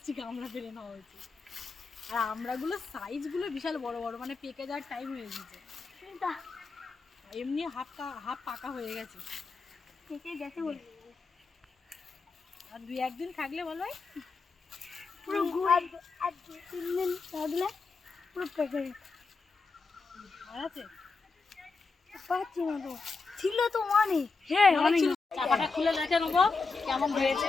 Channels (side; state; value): right; quieter; 4.3 dB